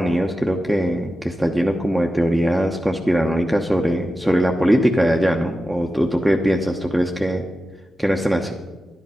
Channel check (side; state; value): both; normal; correlation 0.92